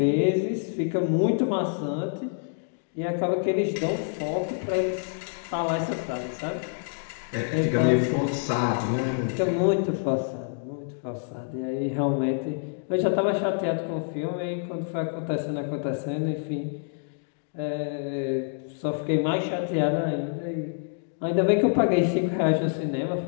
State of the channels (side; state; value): right; silent; digital silence